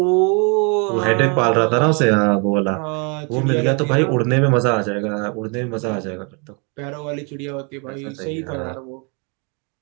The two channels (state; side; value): quieter; left; 34.6 dB